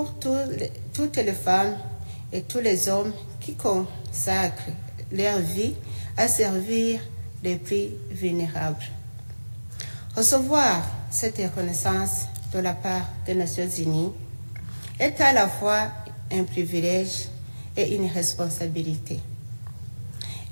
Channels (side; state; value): both; inverted; correlation -1.00